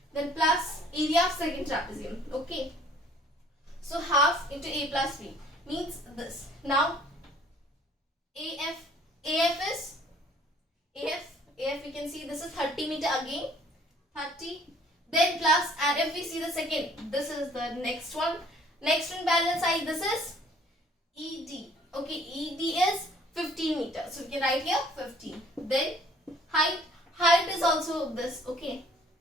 then plus area of second trapezium. Okay, so half into A plus B means this. Now AF is AF we can see this is 30 meter again, 30, then plus, and if we see the second, this is the next one parallel side, this is ED. Okay, ED is 15 meter, so we can write here 15. Then height is also this. Okay,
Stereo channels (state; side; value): normal; both; correlation 0.57